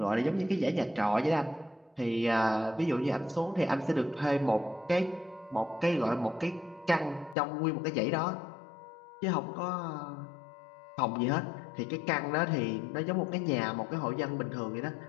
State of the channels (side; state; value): right; drops out; at 7.4 s